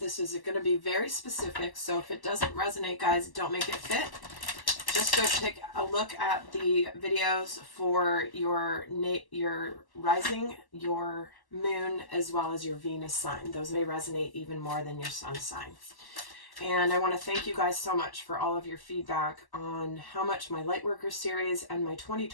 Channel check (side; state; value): right; late; 1.1 ms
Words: is going to be very specific. So if it doesn't resonate, guys, don't make it fit. Just go take a look at the videos for your rising, your moon, as well as your Venus sign. Those may resonate even more than your sun sign. And I want to thank you guys so much for all of your feedback on how much my Lightworker series and my